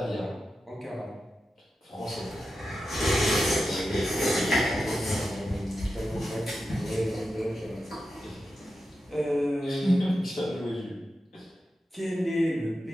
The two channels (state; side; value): normal; both; correlation 0.90